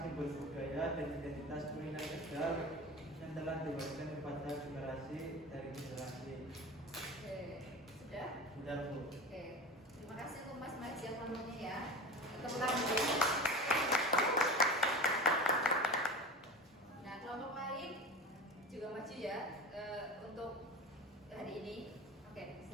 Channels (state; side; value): normal; both; correlation 0.31